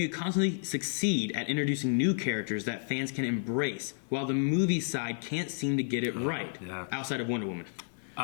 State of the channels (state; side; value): silent; right; digital silence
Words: constantly succeed at introducing new characters that fans can embrace while the movie side can't seem to get it right outside of Wonder Woman?